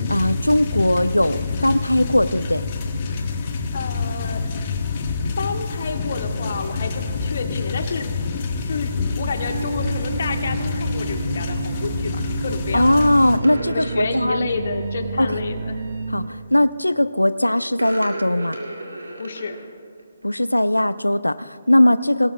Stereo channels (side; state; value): both; inverted; correlation -0.92